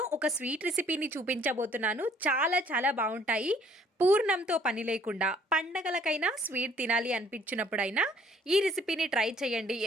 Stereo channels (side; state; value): both; normal; correlation 0.60